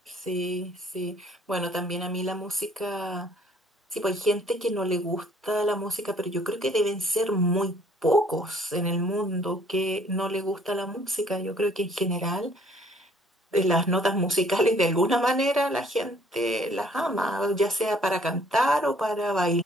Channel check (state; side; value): normal; both; correlation 0.60